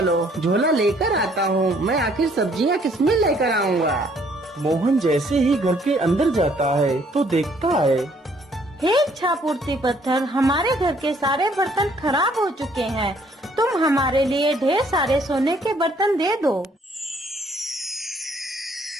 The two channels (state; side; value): normal; both; correlation 0.64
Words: झोला लेकर आता हूँ। मैं आखिर सब्जियाँ किसमें लेकर आऊँगा? मोहन जैसे ही घर के अंदर जाता है तो देखता है, हे इच्छा पूर्ति पत्थर, हमारे घर के सारे बर्तन खराब हो चुके हैं। तुम हमारे लिए ढेर सारे सोने के बर्तन दे दो।